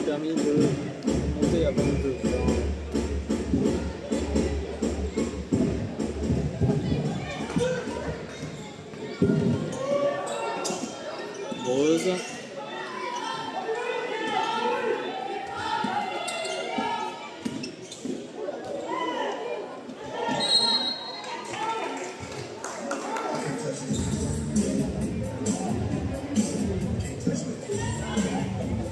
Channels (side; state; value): both; identical; correlation 1.00